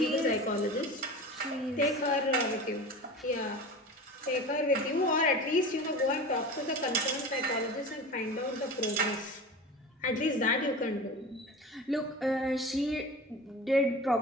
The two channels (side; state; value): both; normal; correlation 0.33